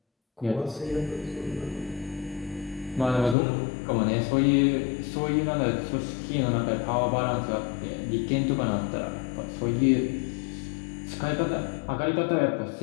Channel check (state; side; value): drops out; right; at 3.4 s